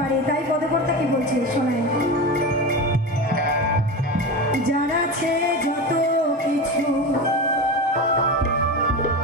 তাই পদকর্তা কি বলছে শোনায়, যারা আছে যত কিছু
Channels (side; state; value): both; normal; correlation 0.24